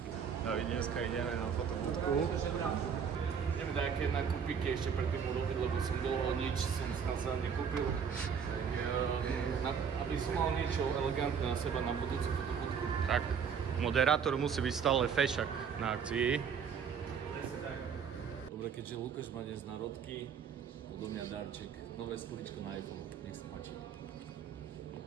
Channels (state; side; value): quieter; left; 6.9 dB